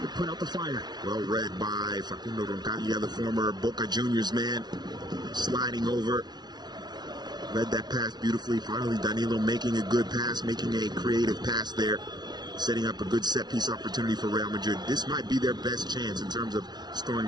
put out the fire. Well read by Facundo Roncaglia, the former Boca Juniors man, sliding over. Read that pass beautifully. Finally, Danilo making a good pass, making a creative pass there, setting up a good set-piece opportunity for Real Madrid. This might be their best chance in terms of scoring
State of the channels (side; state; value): left; late; 0.20 ms